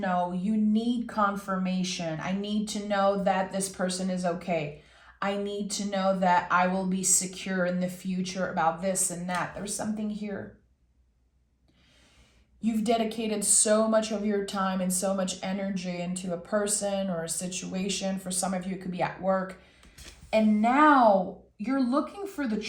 You need confirmation. I need to know that this person is okay. I need to know that I will be secure in the future about this and that. There's something here. You've dedicated so much of your time and so much energy into a person or a situation. For some of you, it could be at work. And now you're looking for the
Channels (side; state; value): both; identical; correlation 1.00